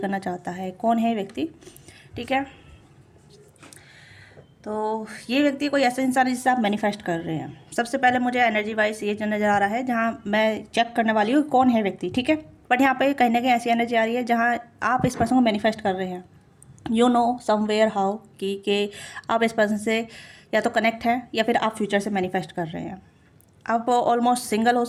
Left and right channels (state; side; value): identical; both; correlation 1.00